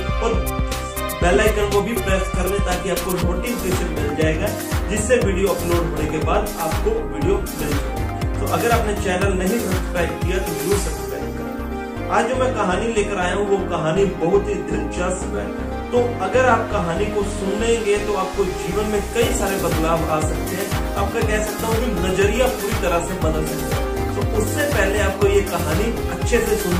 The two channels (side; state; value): both; identical; correlation 1.00